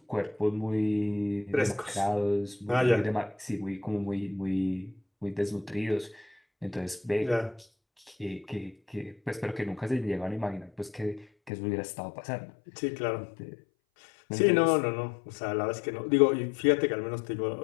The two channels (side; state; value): right; drops out; at 11.5 s